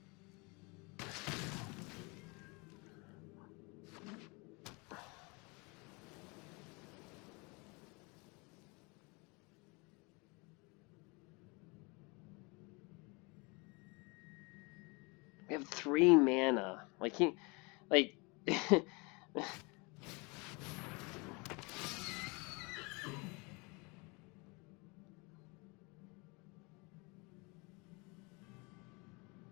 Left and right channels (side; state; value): right; quieter; 28.8 dB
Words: We have 3 mana. Like he, like.